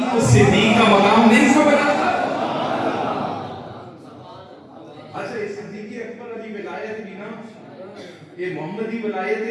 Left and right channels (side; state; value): both; identical; correlation 1.00